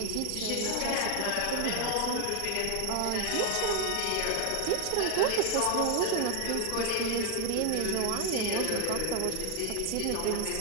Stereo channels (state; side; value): different; both; correlation 0.00